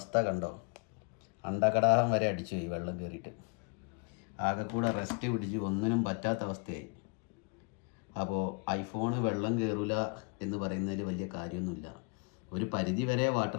കണ്ടോ, അണ്ടകടാഹം വരെ അടിച്ചു ഈ വെള്ളം കയറിയിട്ട്. ആകെ കൂടെ റെസ്റ്റ് പിടിച്ച് ഒന്നിനും പറ്റാത്ത അവസ്ഥയായി. അപ്പോൾ ഐഫോണ് വെള്ളം കയറില്ല എന്ന് പറയുന്നതിൽ വലിയ കാര്യമൊന്നുമില്ല. ഒരു പരിധി വരെ വാട്ടർ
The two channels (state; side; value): quieter; right; 34.8 dB